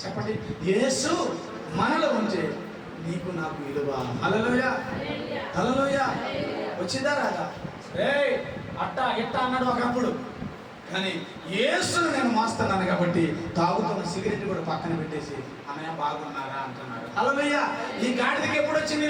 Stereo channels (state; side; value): identical; both; correlation 1.00